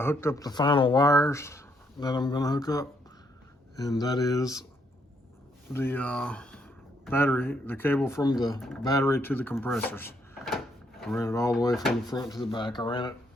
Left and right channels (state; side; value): normal; both; correlation 0.73